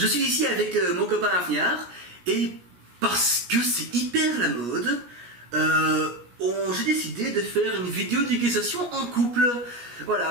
suis ici avec mon copain Afniar, et parce que c'est hyper la mode, j'ai décidé de faire une vidéo d'éducation en couple.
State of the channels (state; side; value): late; left; 17 ms